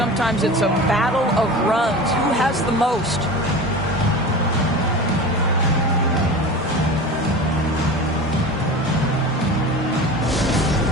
it's a battle of runs. Who has the most?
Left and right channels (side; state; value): both; normal; correlation 0.33